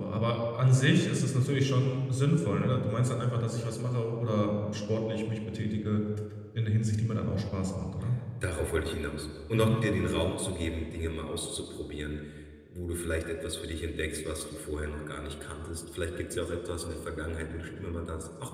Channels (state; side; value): identical; both; correlation 1.00